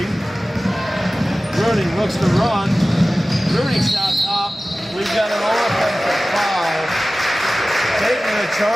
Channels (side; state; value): both; normal; correlation 0.96